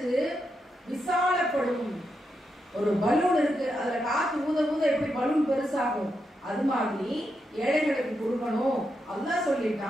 விசாலப்படும். ஒரு பலூன் இருக்கு, அதுல காத்து ஊத ஊத எப்படி பலூன் பெருசாகும், அது மாதிரி ஏழைகளுக்கு கொடுக்கணும். அல்லாஹ்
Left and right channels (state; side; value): normal; both; correlation 0.84